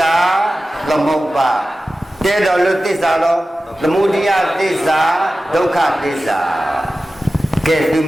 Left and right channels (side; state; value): both; normal; correlation 0.95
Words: သမုပ္ပါတေတော်လသစ္စာတော့သမုဒိယသစ္စာဒုက္ခသစ္စာကဲသူ